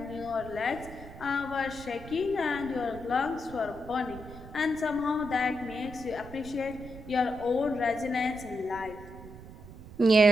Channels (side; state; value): right; noise; rumble, 15 dB below the sound